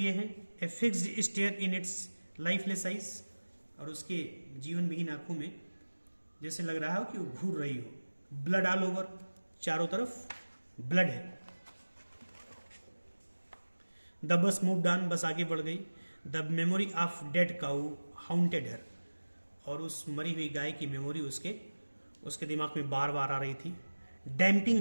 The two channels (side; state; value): both; inverted; correlation -1.00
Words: हैं. A fixed stare in its lifeless eyes. और उसके जीवन विहीन आंखों में जैसे लग रहा हो कि वो घूर रही हो. Blood all over. चारों तरफ ब्लड है. The bus moved on. बस आगे बढ़ गई. The memory of dead cow haunted her. और उस मरी हुई गाय की मेमोरी उसके दिमाग में बार बार आ रही थी.